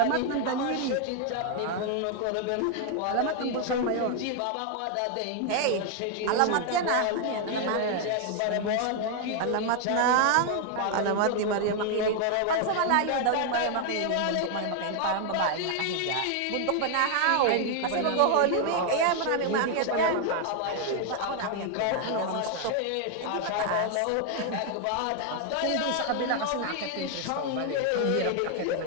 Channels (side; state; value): both; different; correlation 0.00